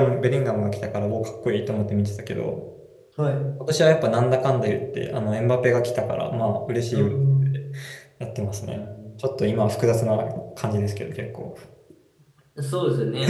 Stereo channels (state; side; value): identical; both; correlation 1.00